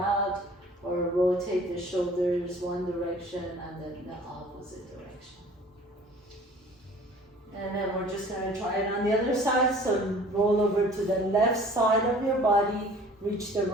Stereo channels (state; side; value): normal; both; correlation 0.49